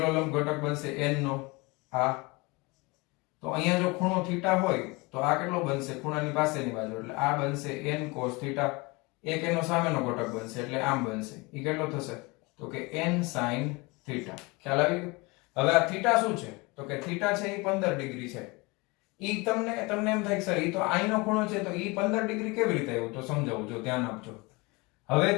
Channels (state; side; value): quieter; right; 25.7 dB